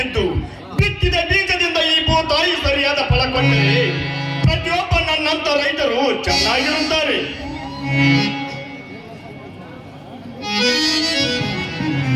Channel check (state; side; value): identical; both; correlation 1.00